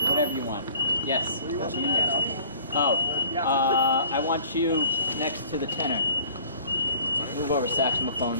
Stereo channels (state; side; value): inverted; both; correlation -0.51